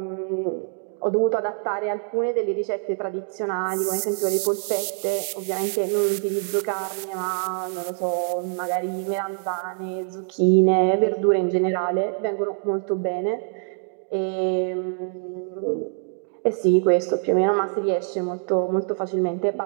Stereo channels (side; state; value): left; silent; 62 dB below the other